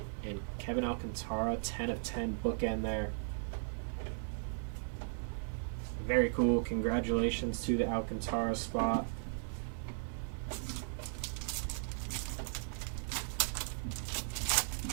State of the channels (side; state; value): left; silent; digital silence